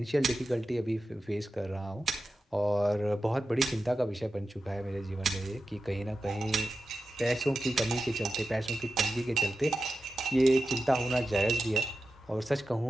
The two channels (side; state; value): both; normal; correlation 0.92